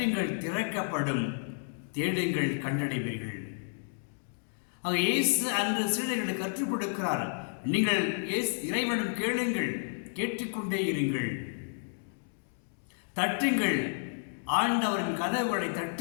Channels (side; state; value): right; silent; digital silence